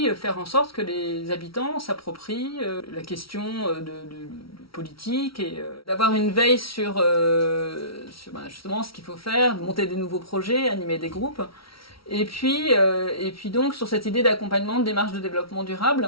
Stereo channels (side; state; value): right; late; 0.75 ms